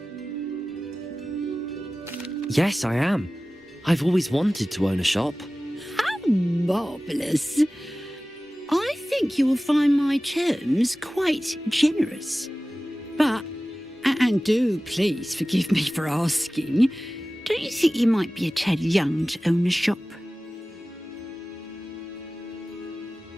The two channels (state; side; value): normal; both; correlation 0.97